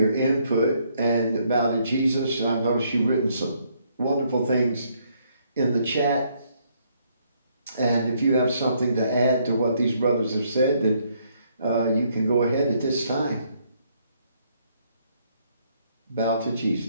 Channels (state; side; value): inverted; both; correlation -0.70